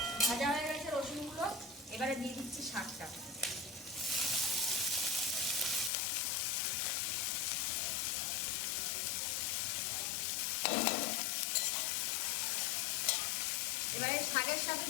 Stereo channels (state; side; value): drops out; right; at 5.9 s